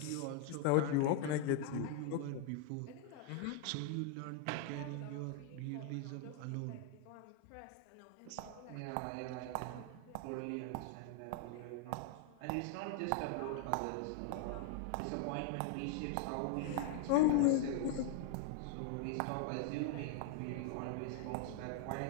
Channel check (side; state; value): both; different; correlation 0.00